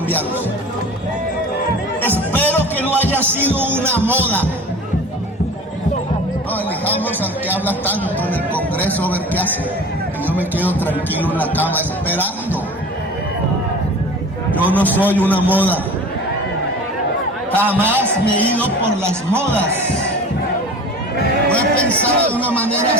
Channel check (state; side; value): normal; both; correlation 0.38